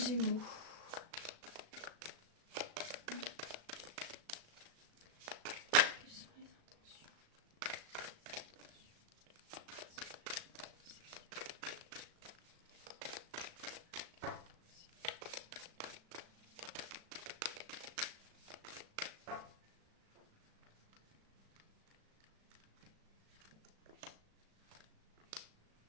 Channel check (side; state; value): left; late; 36 ms